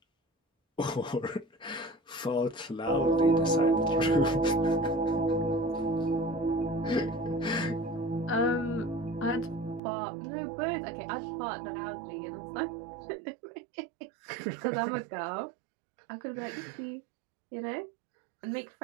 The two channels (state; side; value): drops out; left; at 9.8 s